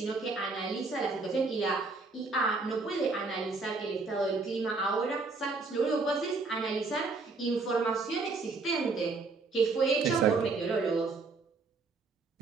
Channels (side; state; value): left; quieter; 4.0 dB